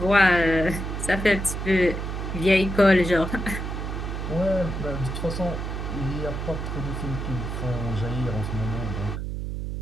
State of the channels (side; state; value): right; noise; hum, 4 dB below the sound